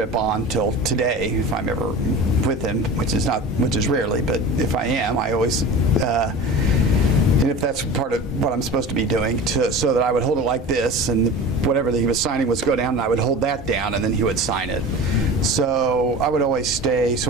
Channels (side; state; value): both; normal; correlation 0.34